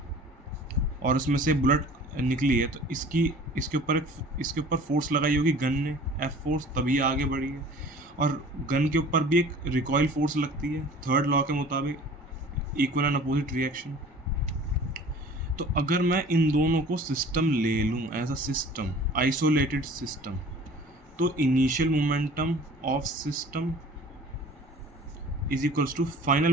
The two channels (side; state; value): both; normal; correlation 0.46